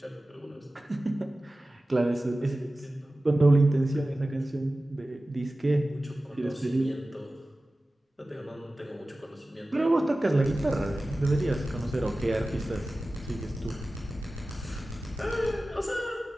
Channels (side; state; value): both; normal; correlation 0.96